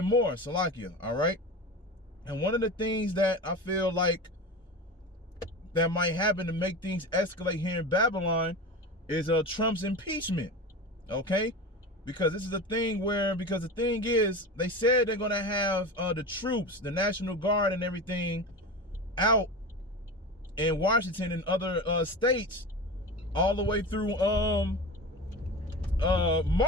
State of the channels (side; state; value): both; normal; correlation 0.28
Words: more. Salakia, all right? And one of the things that I feel like that might happen to make things escalate here in Babylon is Trump's impeachment, okay? Because this is a thing where, because the thing is, they said they're going to have the troops, the National Guard and everything out in Washington and other states all the way through